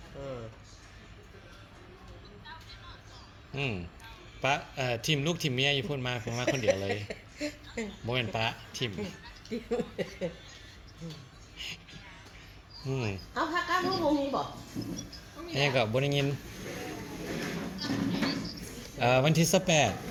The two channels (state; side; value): identical; both; correlation 1.00